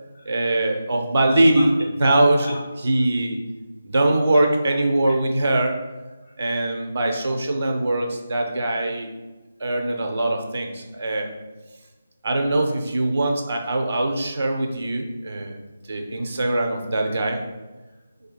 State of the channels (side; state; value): both; inverted; correlation -0.91